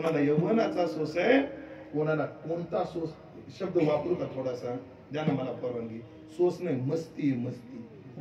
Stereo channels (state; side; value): identical; both; correlation 1.00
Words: यौवनाचा सोस आहे कोणाला कोणता सोस शब्द वापरू का थोडासा द्या ना मला परवानगी सोस नाही मस्ती मस्ती